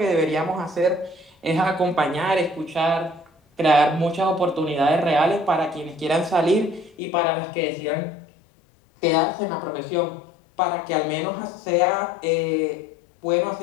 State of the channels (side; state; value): right; drops out; at 7.0 s